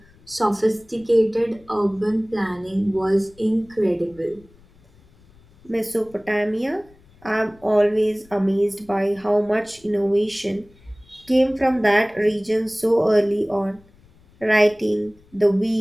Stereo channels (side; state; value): left; noise; rumble, 28 dB below the sound